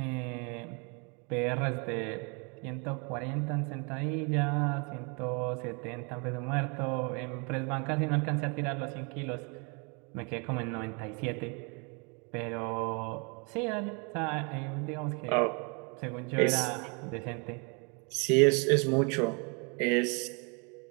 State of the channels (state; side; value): quieter; left; 33.3 dB